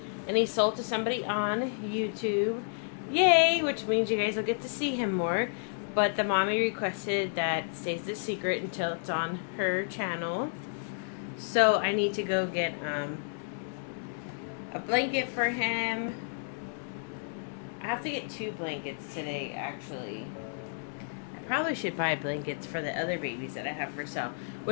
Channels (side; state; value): right; silent; digital silence